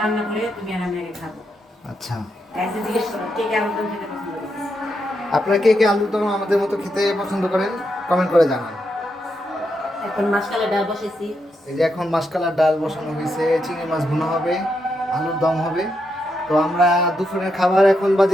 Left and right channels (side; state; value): both; normal; correlation 0.82